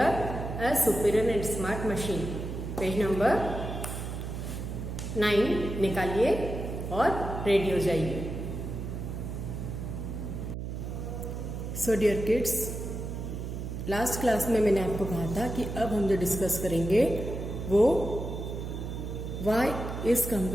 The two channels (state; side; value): noise; right; hum, 6 dB below the sound